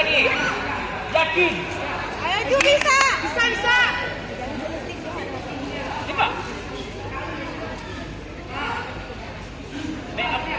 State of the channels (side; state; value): both; identical; correlation 1.00